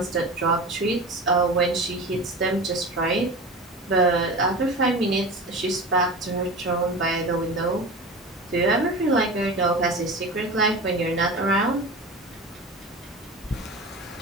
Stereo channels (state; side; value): normal; both; correlation 0.31